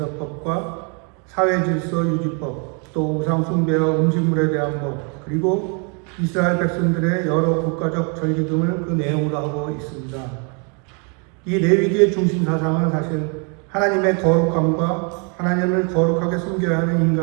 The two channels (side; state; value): left; quieter; 36.4 dB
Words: 사회질서 유지법, 또 우상숭배와 음식물에 대한 것, 그리고 이스라엘 백성들의 여러 국가적 절기 등을 그 내용으로 하고 있습니다. 이 레위기의 중심 사상은 사실 하나님의 거룩함과 하나님을 거룩하게 섬겨야 하는